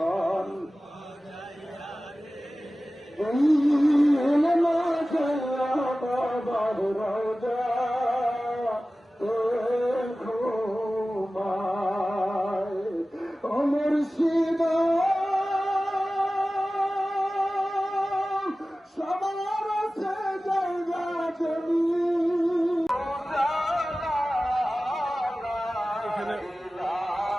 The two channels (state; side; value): normal; both; correlation 0.96